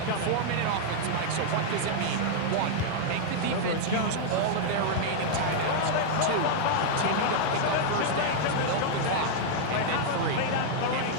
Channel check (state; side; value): different; both; correlation -0.01